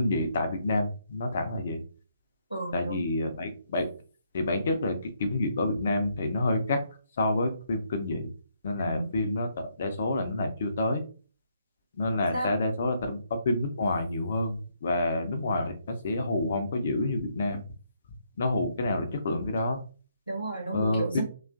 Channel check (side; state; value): both; inverted; correlation -0.74